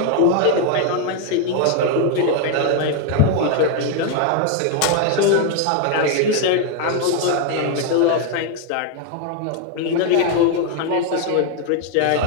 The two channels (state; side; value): different; both; correlation 0.01